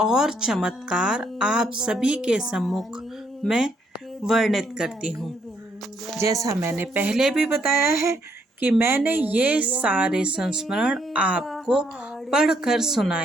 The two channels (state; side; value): normal; both; correlation 0.72